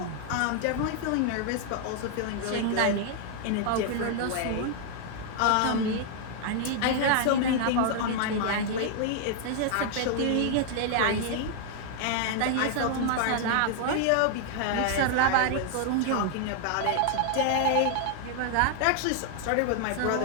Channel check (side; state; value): both; different; correlation 0.00